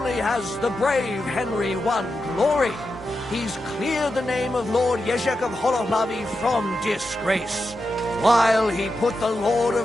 has the brave Henry won glory, he's cleared the name of Lord Ježek of Holohlavy from disgrace, while he put the Lord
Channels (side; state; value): both; normal; correlation 0.88